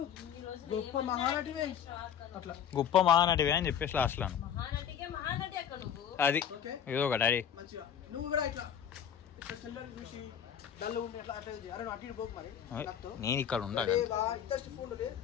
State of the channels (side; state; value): right; quieter; 8.9 dB